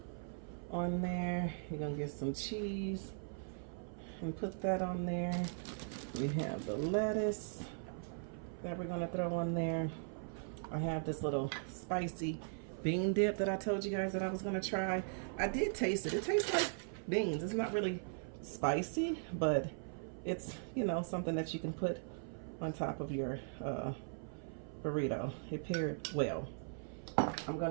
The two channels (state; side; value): silent; left; 52 dB below the other